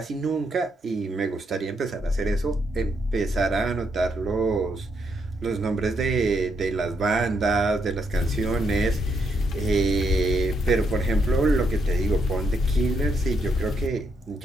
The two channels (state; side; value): normal; both; correlation 0.77